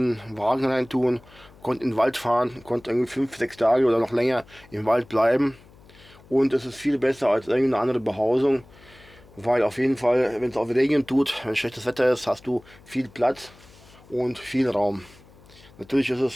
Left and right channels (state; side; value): noise; left; hum, 25 dB below the sound